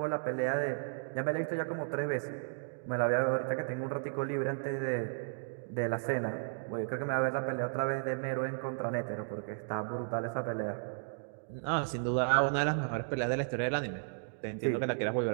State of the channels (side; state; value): left; silent; digital silence